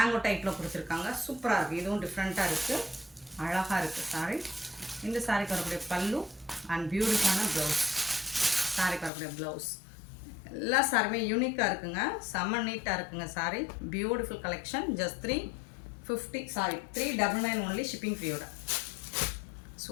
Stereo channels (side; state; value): right; drops out; at 9.1 s